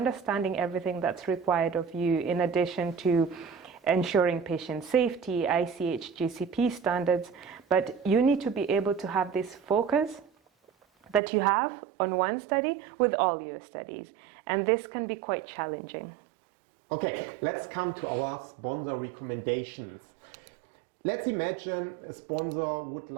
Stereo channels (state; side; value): drops out; left; at 11.2 s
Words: everything that's required of you, in addition to ensuring patient safety, ICH, GCP standards, but you need to be able to have this focus that you have on one study with all your studies. And this can be quite challenging. Okay, let's come to our sponsor recommendations. Let's imagine a sponsor would